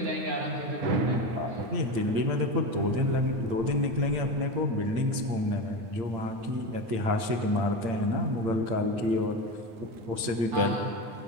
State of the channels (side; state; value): left; late; 8.8 ms